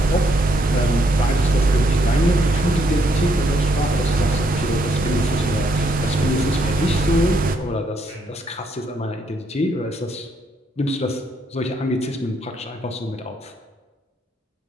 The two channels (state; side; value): normal; both; correlation 0.74